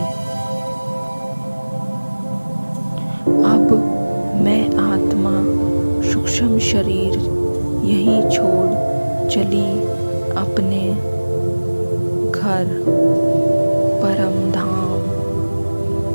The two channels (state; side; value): inverted; both; correlation -1.00